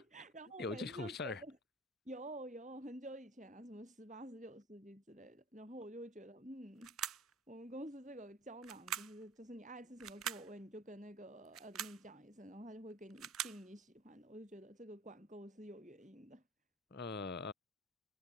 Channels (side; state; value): both; normal; correlation 0.42